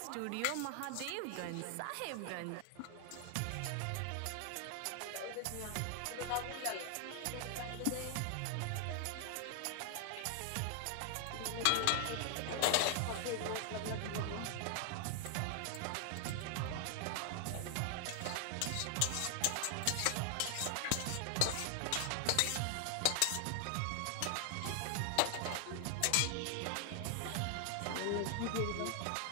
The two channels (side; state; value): both; different; correlation 0.00